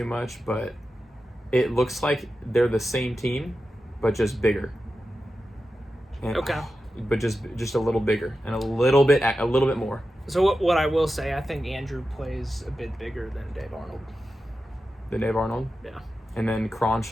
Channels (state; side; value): normal; both; correlation 0.92